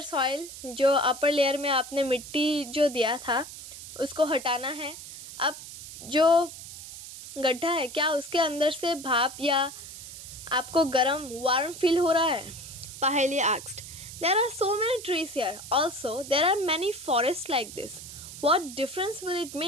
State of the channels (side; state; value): right; noise; hiss, 13 dB below the sound